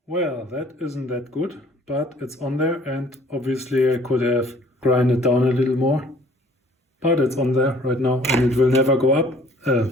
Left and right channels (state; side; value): normal; both; correlation 0.55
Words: Well, that isn't that good, but it's on there, and obviously I could have grinded down a little more, but it's on there right now and it will never go up.